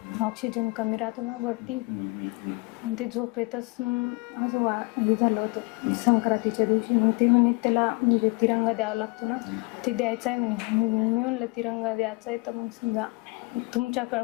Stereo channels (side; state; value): right; quieter; 26.8 dB